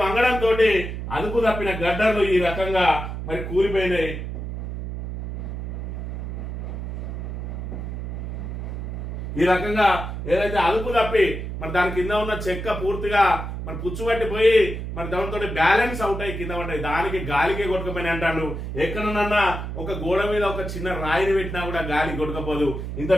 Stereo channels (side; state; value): right; noise; hum, 6 dB below the sound